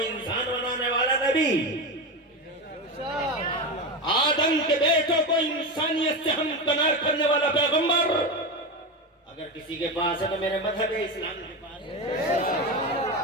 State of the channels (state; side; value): normal; both; correlation 0.18